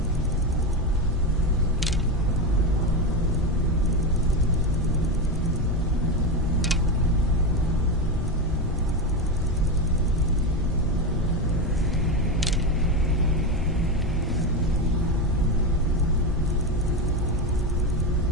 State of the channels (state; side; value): normal; both; correlation 0.14